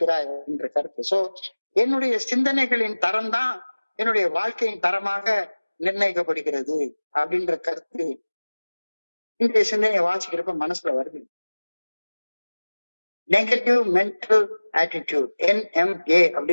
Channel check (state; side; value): inverted; both; correlation -1.00